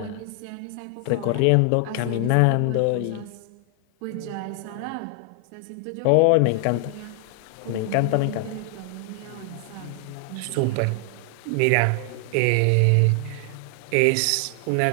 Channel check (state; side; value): different; both; correlation 0.00